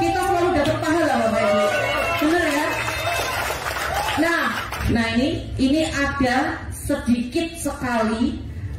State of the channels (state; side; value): identical; both; correlation 1.00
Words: kita selalu dapat pahala Bapak Ibu. Benar ya? Nah ini ada sedikit sekali